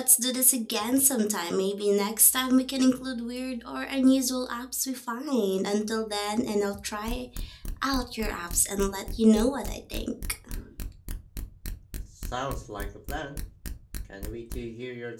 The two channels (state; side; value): identical; both; correlation 1.00